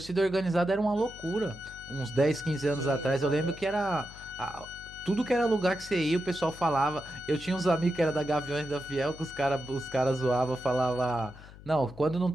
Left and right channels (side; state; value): left; noise; hum, 18 dB below the sound